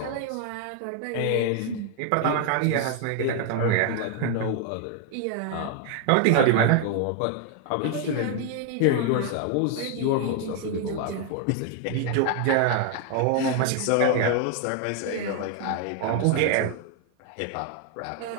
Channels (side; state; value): both; different; correlation 0.00